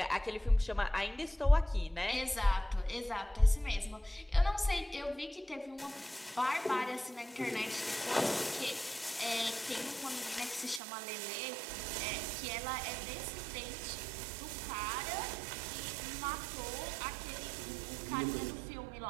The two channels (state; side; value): drops out; left; at 10.8 s